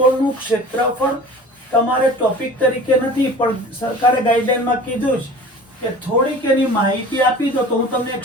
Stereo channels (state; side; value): normal; both; correlation 0.41